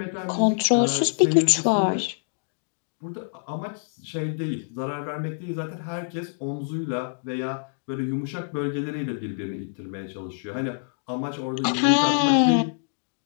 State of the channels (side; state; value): right; silent; digital silence